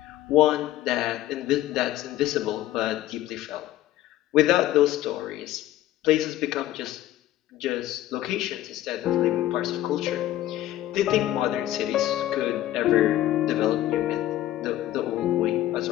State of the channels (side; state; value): right; quieter; 14.0 dB